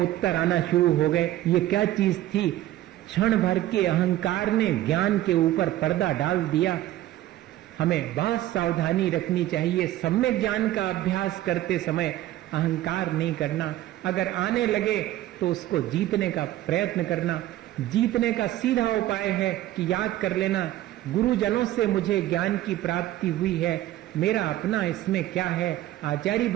उत्तर आना शुरू हो गए। ये क्या चीज थी? क्षण भर के अहंकार ने ज्ञान के ऊपर पर्दा डाल दिया। हमें बहुत सावधानी रखनी चाहिए। सम्यक ज्ञान का अभ्यास करते समय अहंकार नहीं करना। अगर आने लगे तो उसको जीतने का प्रयत्न करना। जीतने का सीधा उपाय है कि याद कर लेना, गुरुजनों से मुझे ज्ञान की प्राप्ति हुई है, मेरा अपना इसमें क्या है? आचार्य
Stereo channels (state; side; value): quieter; left; 14.4 dB